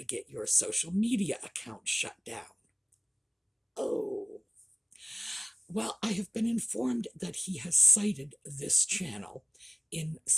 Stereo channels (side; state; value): both; identical; correlation 1.00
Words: get your social media account shut down. Oh. Well, I have been informed that he has cited this channel in